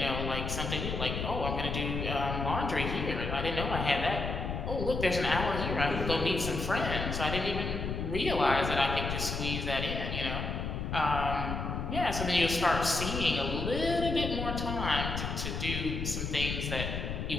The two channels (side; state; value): left; noise; rumble, 3 dB below the sound